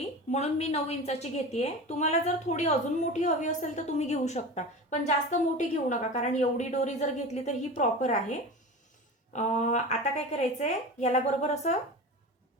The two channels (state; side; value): normal; both; correlation 0.31